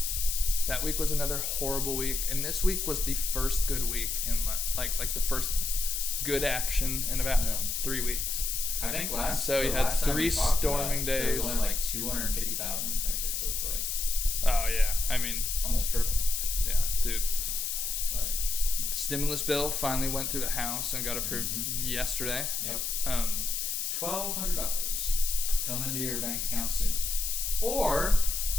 That week was another horrible week. And this week was the first good week in like the first good action in about 3 weeks. I think So you had 3 storming days. There was only like 250,000 infected. So it's like... Oh, yeah. I mean... almost triple. Yeah, dude. Like... The stimulus bill finally went through the House and got approved yesterday. Yep. $1,200 coming into your bank account soon. Or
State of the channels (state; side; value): noise; left; hiss, 1 dB below the sound